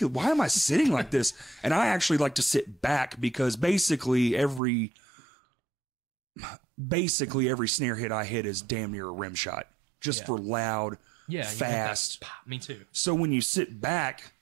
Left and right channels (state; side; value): drops out; left; at 4.6 s